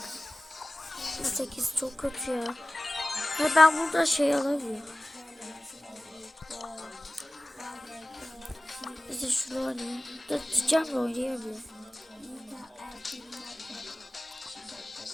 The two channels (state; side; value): normal; both; correlation 0.97